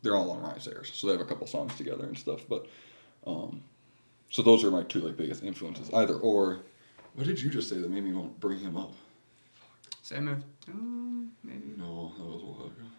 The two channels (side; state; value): both; inverted; correlation -1.00